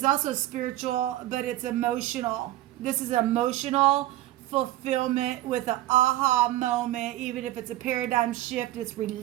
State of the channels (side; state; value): left; quieter; 15.4 dB